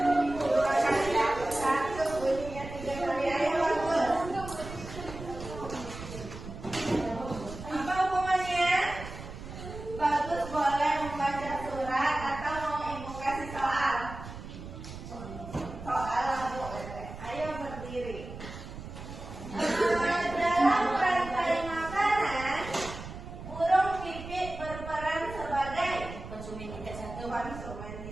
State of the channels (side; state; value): right; noise; rumble, 11 dB below the sound